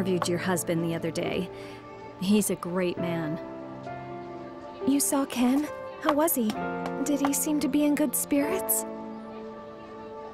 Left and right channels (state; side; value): identical; both; correlation 1.00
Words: your husband the other day. He's a great man. You saw Ken? How was he? Did he seem to be in good spirits?